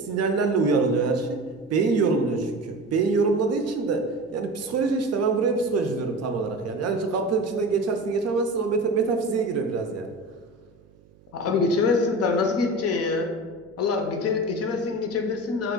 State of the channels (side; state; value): right; noise; hum, 28 dB below the sound